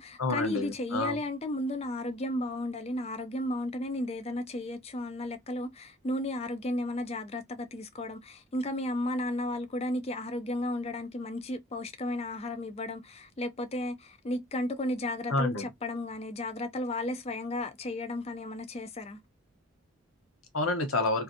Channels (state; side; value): normal; both; correlation 0.44